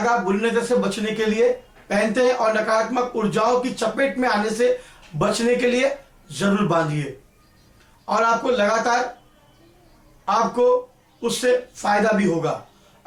बुरी नजर से बचने के लिए पहनते हैं और नकारात्मक ऊर्जाओं की चपेट में आने से बचने के लिए जरूर बांधिए और आपको लगातार आपको उससे फायदा भी होगा।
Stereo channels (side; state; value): both; identical; correlation 1.00